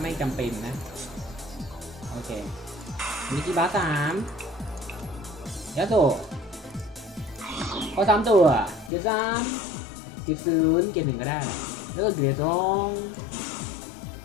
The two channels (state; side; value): drops out; right; at 8.9 s